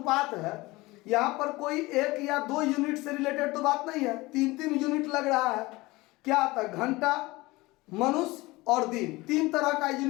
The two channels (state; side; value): quieter; right; 21.2 dB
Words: है, यहाँ पर कोई 1 या 2 यूनिट से रिलेटेड तो बात नहीं है, 3-3 यूनिट लग रहा है। क्या आता है, घंटा, मनुष्य और दिन, 3 तरह का